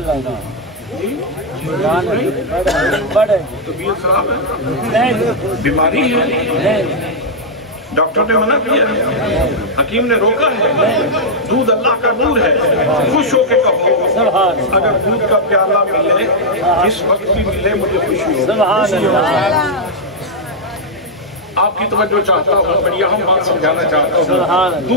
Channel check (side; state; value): both; normal; correlation -0.04